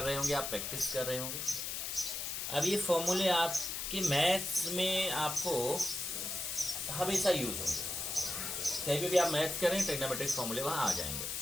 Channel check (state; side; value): noise; left; hiss, 3 dB below the sound